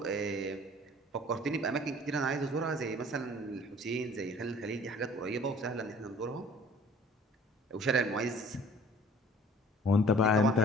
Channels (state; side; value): normal; both; correlation 0.50